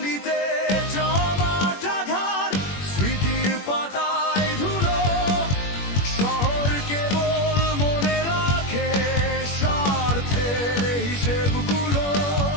জমাটা ঘর, স্মৃতির পাতায় ধুলো। শহর কেবল মনে রাখে স্বার্থের হিসেবগুলো।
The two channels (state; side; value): late; right; 21 ms